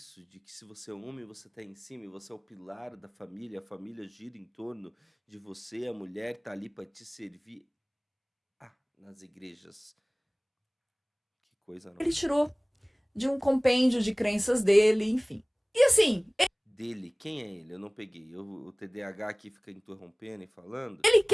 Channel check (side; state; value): both; identical; correlation 1.00